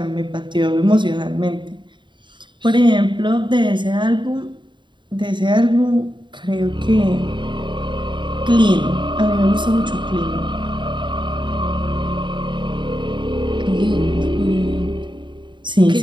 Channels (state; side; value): late; left; 0.23 ms